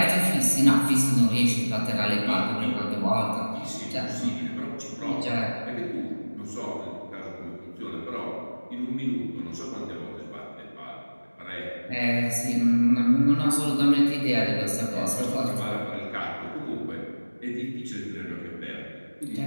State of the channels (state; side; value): inverted; both; correlation -1.00